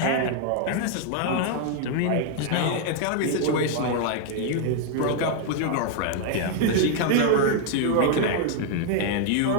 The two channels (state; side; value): different; both; correlation 0.00